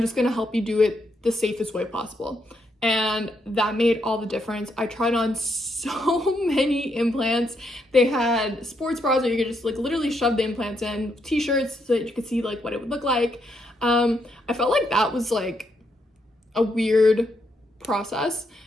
going to help you do it the safest way possible. And that made all the difference. I tried on so many implants. They had sports bras where you could just like literally shove the implants in, t-shirts so that you could see like what it would look like. I felt like that was like a weird process.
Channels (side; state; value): both; normal; correlation 0.77